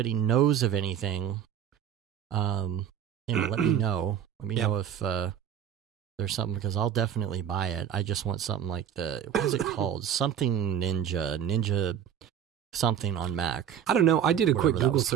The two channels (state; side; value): quieter; left; 9.1 dB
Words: knows of anything, you know, let me know. Let me know if there's something, because I'll definitely buy it. I just want something like what is it called? Something Ninja something on Mac. I don't know. I did a quick Google